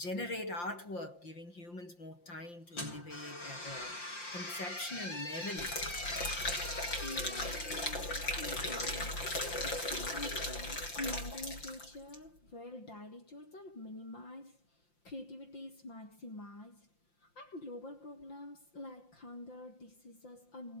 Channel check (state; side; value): late; right; 5.8 ms